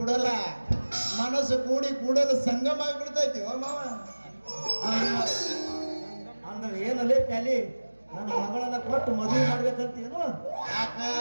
ಬಿಡಲ್ಲ, ಮನಸ್ಸು ಕೂಡಲು ಸಂಗಮ ಆಗಿಬಿಡ್ತೈತಿ ಮಾವ. ಅಂದ್ರೆ ಏನಲ್ಲೇ ಪ್ಯಾಲಿ ನನ್ನ ಮಗಳನ್ನ ಕೊಟ್ಟು ಮದುವೆ ಮಾಡ್ಬೇಕಂತೇನು? ಯಾಕ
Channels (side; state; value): both; inverted; correlation -1.00